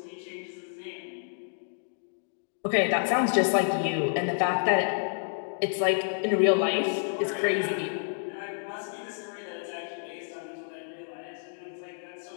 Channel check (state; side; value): silent; right; digital silence